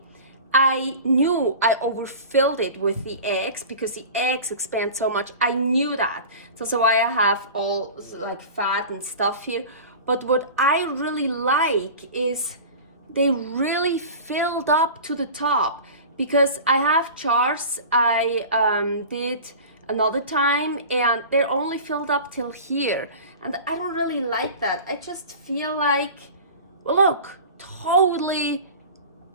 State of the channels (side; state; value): both; inverted; correlation -0.36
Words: I knew I overfilled it with the eggs because the eggs expand so much. I knew that. So that's why I have all like fat and stuff here. But what I really like is they really filled up to the top, because I have jars I did another time and they're only filled up till here, and I don't really like that. I just feel like, well, look, totally